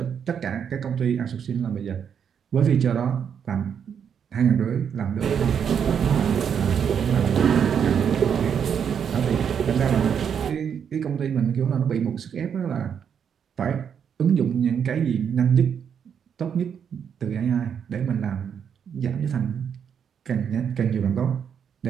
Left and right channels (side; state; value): left; quieter; 7.7 dB